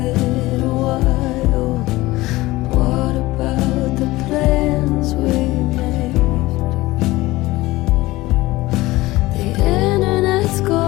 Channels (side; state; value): right; quieter; 19.0 dB